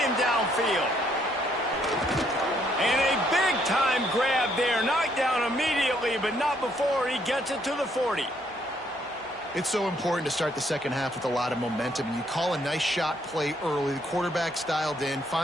him downfield. And a big-time grab there. Knocked down immediately, but not before he gets it to the 40. It's so important to start the second half with a lot of momentum. You call a nice shot play early. The quarterback's dialed in,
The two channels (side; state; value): both; normal; correlation 0.70